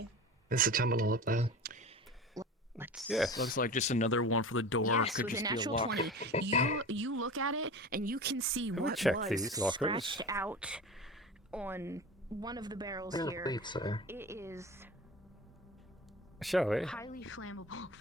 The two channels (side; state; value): both; normal; correlation 0.33